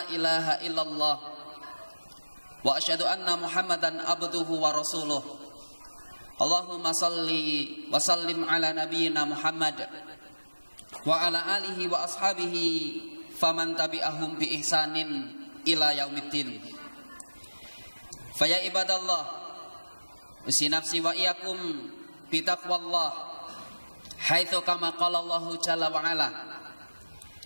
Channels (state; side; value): inverted; both; correlation -1.00